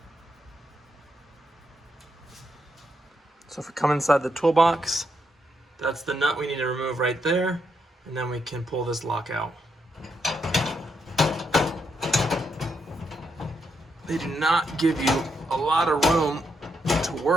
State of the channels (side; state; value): both; normal; correlation 0.80